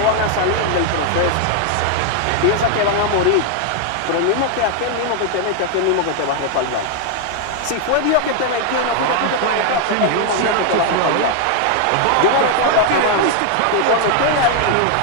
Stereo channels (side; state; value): both; different; correlation 0.00